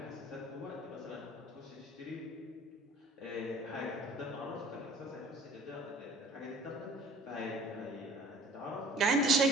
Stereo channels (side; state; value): both; normal; correlation 0.49